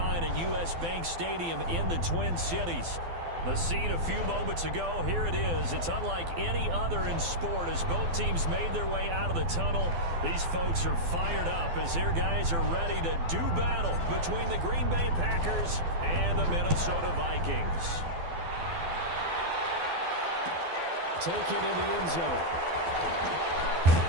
at U.S. Bank Stadium in the Twin Cities. The scene a few moments ago, here it is. It's unlike any other in sport as both teams made their way out of the tunnel. These folks are fired up as their guys are ready to do battle between the Green Bay Packers and the Minnesota Vikings. Taken in the end zone.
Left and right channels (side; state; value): left; late; 12 ms